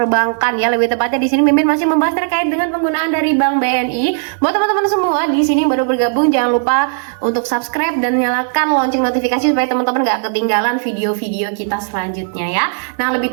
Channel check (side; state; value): left; silent; 56 dB below the other